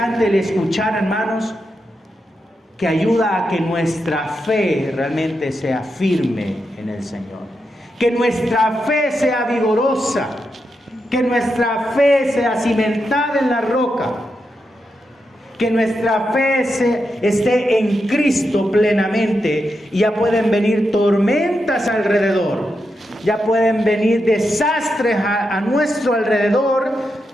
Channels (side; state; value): both; normal; correlation 0.86